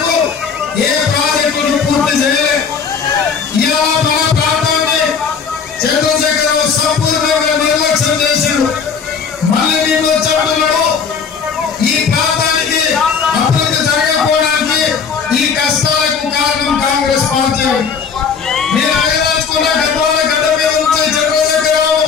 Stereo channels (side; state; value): right; quieter; 6.1 dB